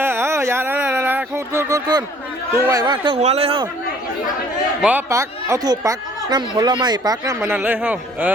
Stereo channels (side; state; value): both; normal; correlation 0.56